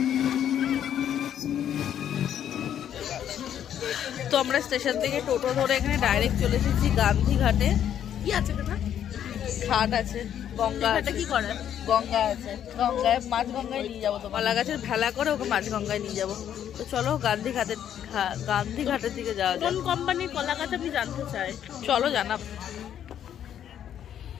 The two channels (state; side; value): quieter; right; 9.9 dB